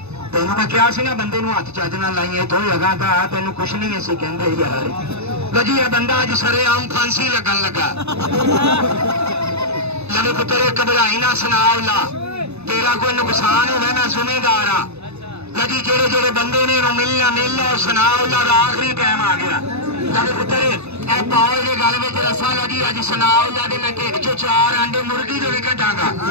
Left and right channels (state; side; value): late; left; 0.80 ms